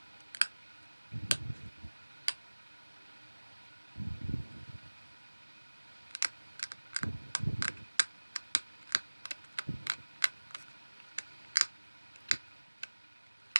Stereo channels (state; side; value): inverted; both; correlation -1.00